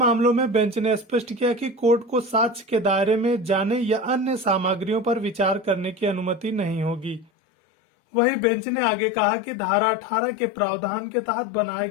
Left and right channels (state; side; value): drops out; right; at 7.2 s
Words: में बेंच ने स्पष्ट किया कि कोर्ट को साक्ष्य के दायरे में जाने या अन्य सामग्रियों पर विचार करने की अनुमति नहीं होगी। वहीं बेंच ने आगे कहा कि धारा 18 के प्रावधान के तहत बनाए